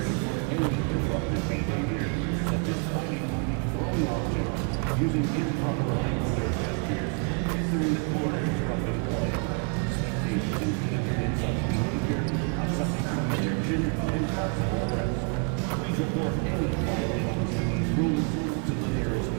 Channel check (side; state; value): left; quieter; 36.4 dB